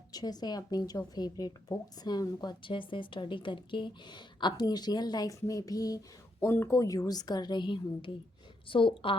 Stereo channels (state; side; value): normal; both; correlation 0.79